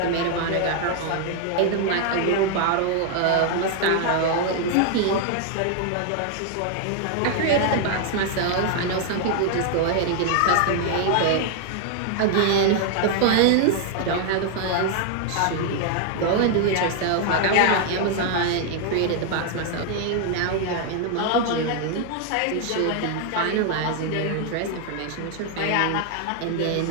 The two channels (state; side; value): different; both; correlation 0.00